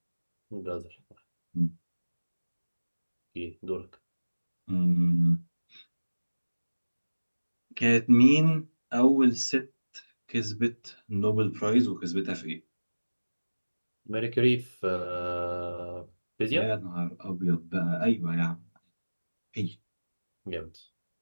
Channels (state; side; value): inverted; both; correlation -1.00